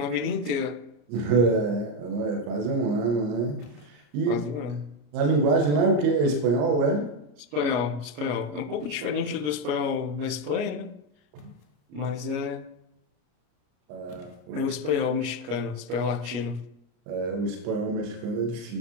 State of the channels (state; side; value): late; left; 33 ms